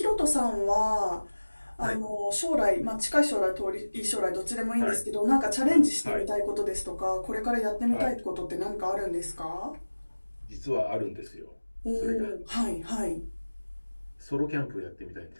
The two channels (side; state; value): both; inverted; correlation -1.00